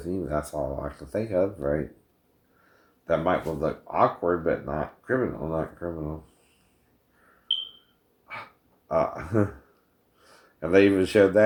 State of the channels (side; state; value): both; identical; correlation 1.00